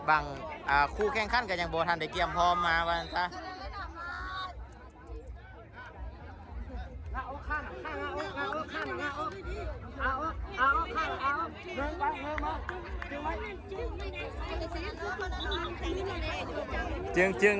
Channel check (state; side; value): identical; both; correlation 1.00